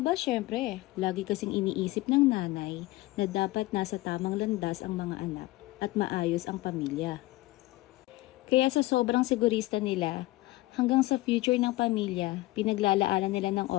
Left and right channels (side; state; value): right; quieter; 19.0 dB